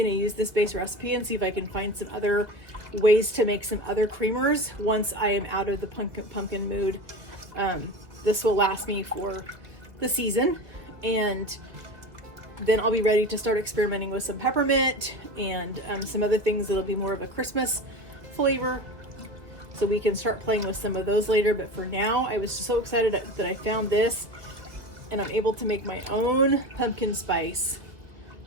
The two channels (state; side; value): late; left; 1.9 ms